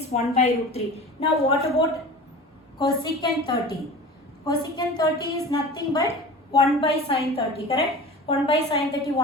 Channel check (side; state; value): both; normal; correlation 0.36